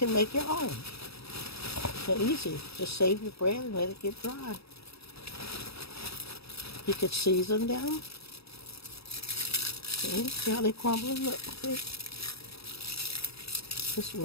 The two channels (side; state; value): right; late; 0.77 ms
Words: make your own. They're easy. Just save your bread and let it get dry. You could season them. See how they crumble? Look, see? Just